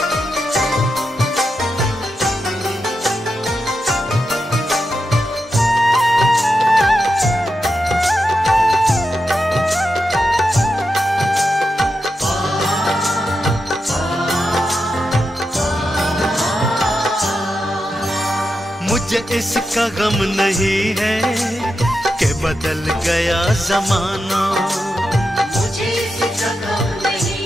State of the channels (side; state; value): both; normal; correlation 0.88